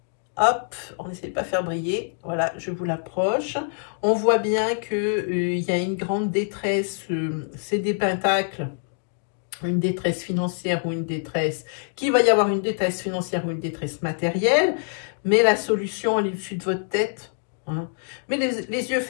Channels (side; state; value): right; silent; 62 dB below the other